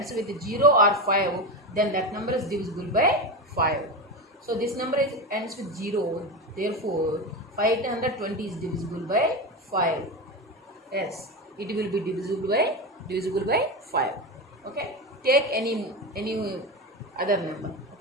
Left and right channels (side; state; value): both; normal; correlation 0.19